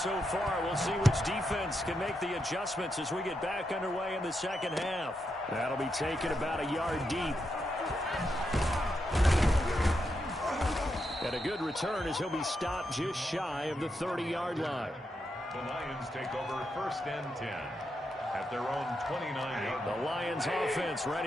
far. We'll see which defense can make the adjustments as we get back underway in the second half. That'll be taken about a yard deep. And a good return as he'll be stopped just shy of the 30-yard line. The Lions take over 1st and 10 at their own 29-yard line. The Lions offense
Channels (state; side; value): normal; both; correlation 0.84